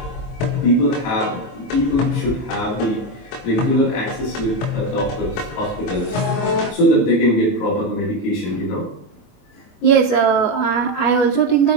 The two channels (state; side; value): late; right; 24 ms